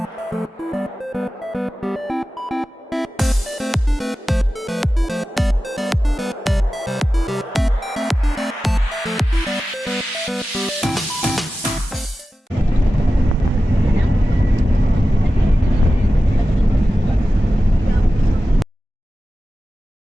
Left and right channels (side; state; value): both; normal; correlation 0.94